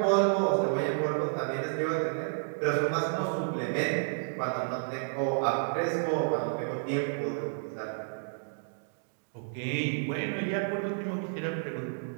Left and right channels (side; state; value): left; silent; digital silence